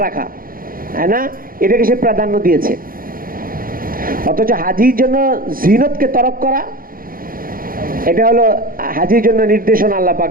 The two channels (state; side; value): late; left; 0.41 ms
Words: রাখা, হ্যাঁ না, এটাকে সে প্রাধান্য দিয়েছে। অথচ হাজির জন্য জিনতকে তরক করা, এটা হলো হাজির জন্য নির্দেশনা আল্লাহ